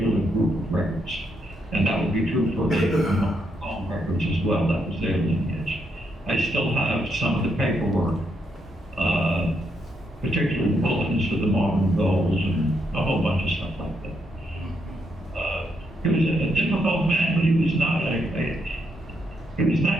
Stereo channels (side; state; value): both; normal; correlation 0.78